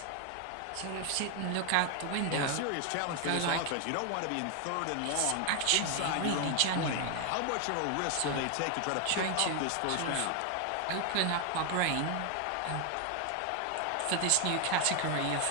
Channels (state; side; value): different; both; correlation 0.01